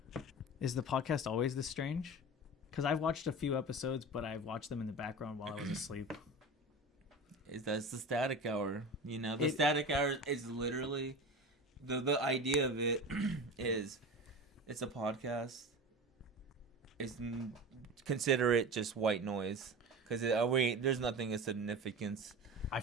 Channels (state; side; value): normal; both; correlation 0.30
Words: Is the podcast always this strange? Because I've watched a few episodes, but I've watched them in the background while I was asleep. That's the static hour. You know, the static hour is literally the idea of it is it's a podcast. Consider it just white noise because there's nothing of significance. I